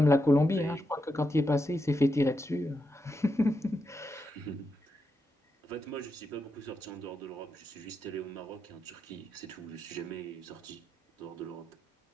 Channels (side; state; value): both; normal; correlation 0.85